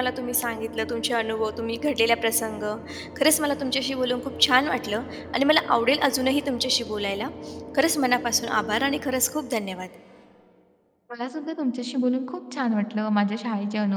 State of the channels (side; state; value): both; identical; correlation 1.00